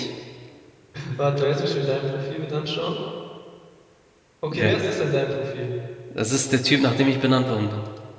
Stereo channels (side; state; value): both; identical; correlation 1.00